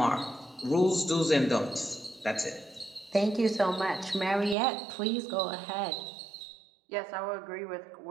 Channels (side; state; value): left; drops out; at 4.5 s